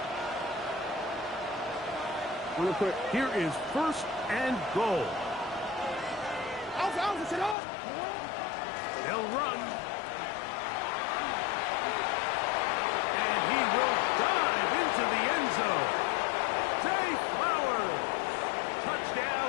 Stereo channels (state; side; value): drops out; right; at 7.6 s